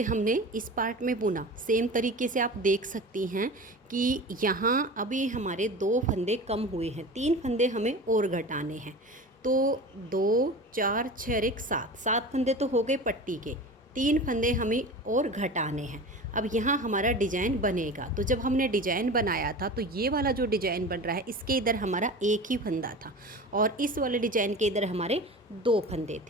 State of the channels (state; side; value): normal; both; correlation 0.34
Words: हमने इस पार्ट में बुना, सेम तरीके से आप देख सकती हैं कि यहाँ अभी हमारे 2 फंदे कम हुए हैं, 3 फंदे हमें और घटाने हैं। तो 2 4 6 और 1 7 फंदे तो हो गए पट्टी के, 3 फंदे हमें और घटाने हैं। अब यहाँ हमारा डिजाइन बनेगा। तो जब हमने डिजाइन बनाया था तो ये वाला जो डिजाइन बन रहा है, इसके इधर हमारा एक ही फंदा था और इस वाले डिजाइन के इधर हमारे 2 फंदे